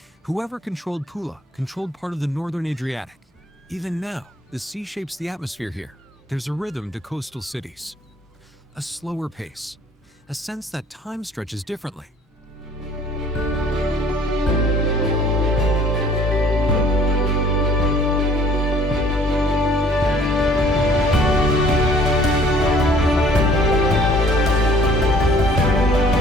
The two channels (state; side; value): normal; both; correlation 0.55